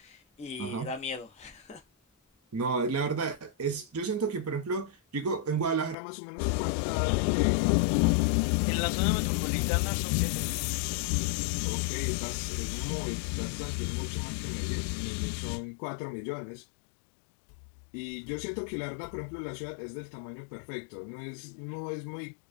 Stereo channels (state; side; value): drops out; right; at 6.0 s